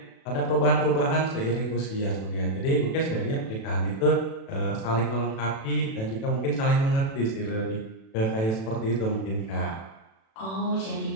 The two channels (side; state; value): right; late; 36 ms